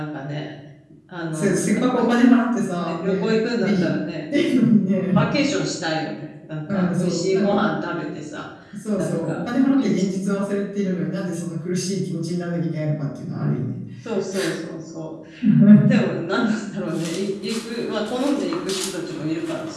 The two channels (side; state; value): both; identical; correlation 1.00